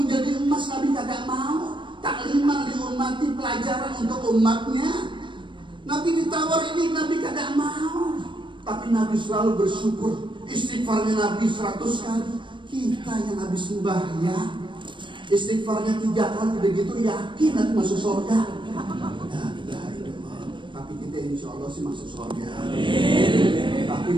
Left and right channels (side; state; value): left; late; 0.23 ms